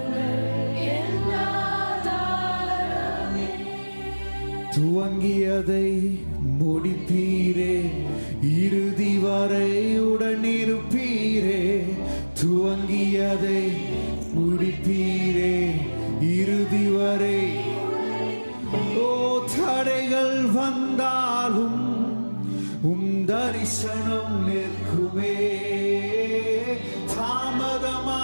துவங்கியதை முடிப்பீரே, இறுதி வரை உடனிருப்பீரே. துவங்கியதை முடிப்பீரே, இறுதி வரை. ஓ தடைகள் வந்தாலும் உம் தரிசனம் நிற்குமே,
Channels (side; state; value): both; inverted; correlation -1.00